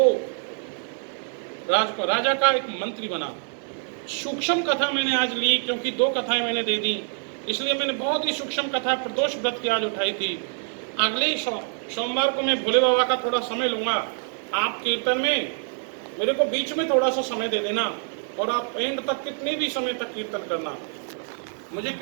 राजा का एक मंत्री बना। सूक्ष्म कथा मैंने आज ली क्योंकि 2 कथाएं मैंने दे दी, इसलिए मैंने बहुत ही सूक्ष्म कथा प्रदोष व्रत की आज उठाई थी। अगले सोमवार को मैं भोले बाबा का थोड़ा समय लूंगा। आप कीर्तन में मेरे को बीच में थोड़ा सा समय दे देना और आप एंड तक कितने भी समय तक कीर्तन करना मुझे,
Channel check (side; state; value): left; silent; 56 dB below the other